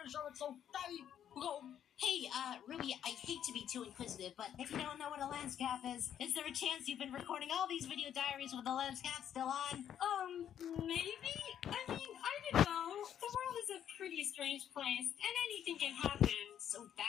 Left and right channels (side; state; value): right; quieter; 9.7 dB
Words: sure it's so fatty. Go. Hey, Ruby, I hate to be too inquisitive, but if you don't know what a lens cap is there a chance you've been recording all these video diaries with the lens cap still on? Maybe? I mean, I don't know. The world is a pretty strange place, and anything can happen. So